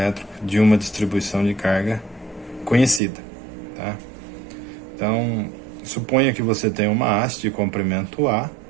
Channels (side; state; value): left; drops out; at 3.0 s